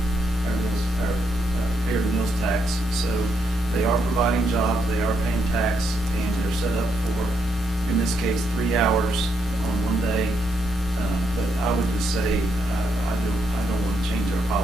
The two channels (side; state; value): both; normal; correlation 0.78